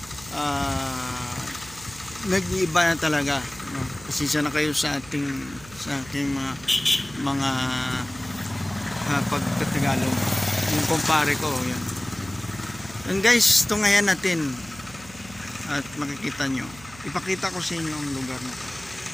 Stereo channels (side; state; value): right; noise; hum, 20 dB below the sound